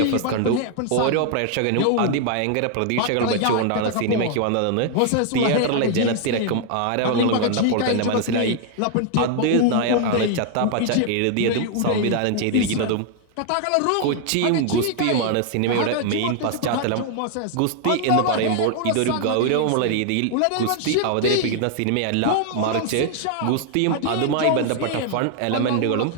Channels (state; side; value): different; both; correlation 0.00